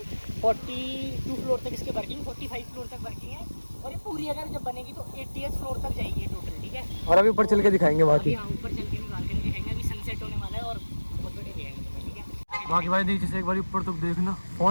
42 फ्लोर तक इसके वर्किंग, 45 फ्लोर तक वर्किंग है। और ये पूरी अगर जब बनेगी तो 80th फ्लोर तक जाएगी टोटल, ठीक है। और अभी ऊपर चल के दिखाएंगे बाकी। यहाँ ऊपर चल के निकाल के दिखाएंगे, अभी सनसेट होने वाला है और बहुत बड़े दिखाएंगे, ठीक है। बाकी भाई नीचे से एक बार ऊपर तक देखना,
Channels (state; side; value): inverted; both; correlation -1.00